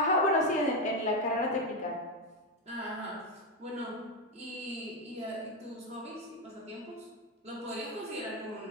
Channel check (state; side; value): normal; both; correlation 0.09